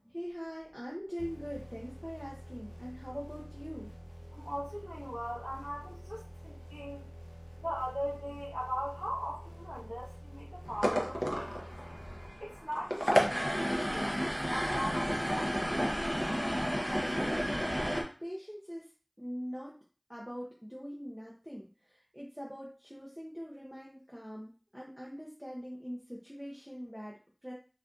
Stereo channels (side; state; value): both; identical; correlation 1.00